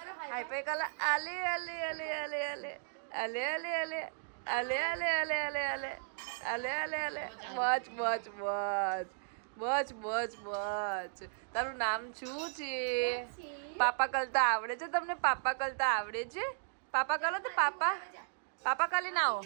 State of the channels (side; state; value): left; silent; digital silence